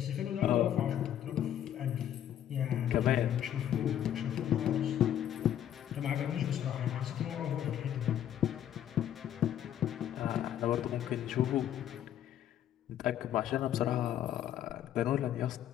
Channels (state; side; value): quieter; right; 10.7 dB